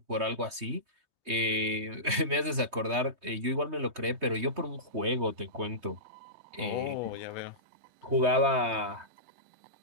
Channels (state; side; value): late; left; 3.2 ms